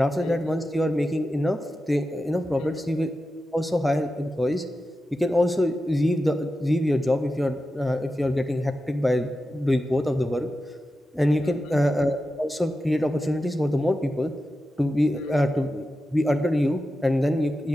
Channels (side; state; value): both; normal; correlation 0.91